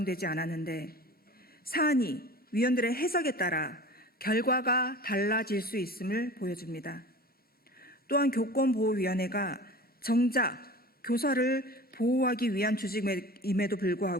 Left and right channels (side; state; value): both; normal; correlation 0.38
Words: 않았는데 사안이 위원들의 해석에 따라 결과가 달라질 수 있음을 보여줍니다. 또한 교권보호위원회가 정작 교사를 보호하기 위한 조직임에도